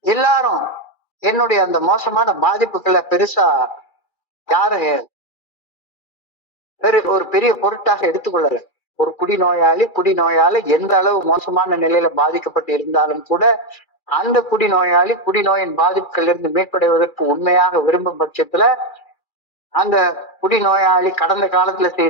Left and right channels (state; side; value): late; right; 2.3 ms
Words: எல்லாரும் என்னுடைய அந்த மோசமான பாதிப்புகளை பெருசா யாரும் ஒரு பெரிய பொருட்டாக எடுத்துக்கொள்ளல. ஒரு குடிநோயாளி எந்த அளவு மோசமான நிலையில பாதிக்கப்பட்டு இருந்தாலும் கூட அந்த குடிநோயின் பாதிப்புகள் இருந்து மீட்படைவதற்கு உண்மையாக விரும்பும் பட்சத்துல அந்த குடிநோயாளி கடந்த காலத்துல